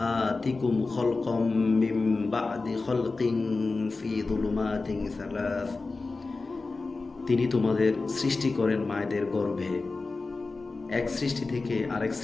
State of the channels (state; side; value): quieter; right; 3.7 dB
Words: খালকাম মিন বা'দি খালকিন ফি যুলুমাতিন সালাস। তিনি তোমাদের সৃষ্টি করেন মায়েদের গর্ভে, এক সৃষ্টি থেকে আরেক